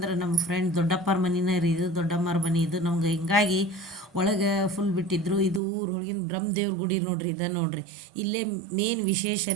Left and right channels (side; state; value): left; drops out; at 5.6 s